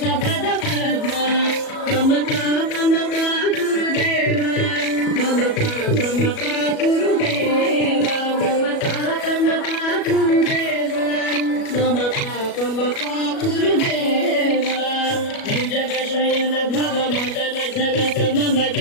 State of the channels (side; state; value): right; late; 37 ms